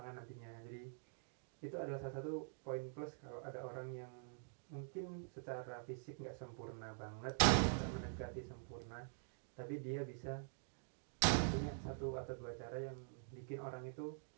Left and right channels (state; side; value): silent; left; digital silence